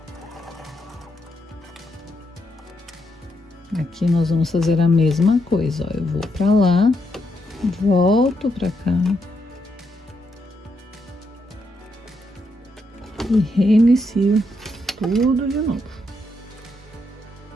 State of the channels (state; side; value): normal; both; correlation 0.79